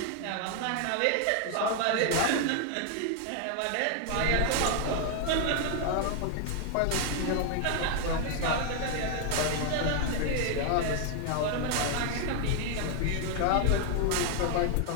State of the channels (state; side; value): different; both; correlation 0.00